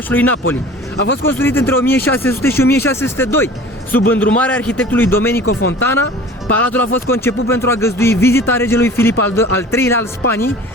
Napoli. A fost construit între 1600 și 1602, sub îndrumarea arhitectului Domenico Fontana. Palatul a fost conceput pentru a găzdui vizita regelui Filip al III-lea al Spaniei,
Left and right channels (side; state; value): both; normal; correlation 0.43